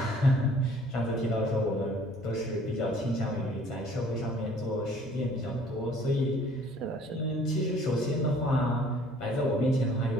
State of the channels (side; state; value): both; normal; correlation 0.55